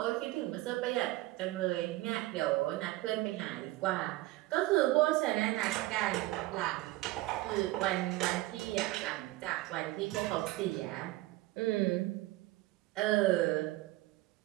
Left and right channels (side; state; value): left; quieter; 18.6 dB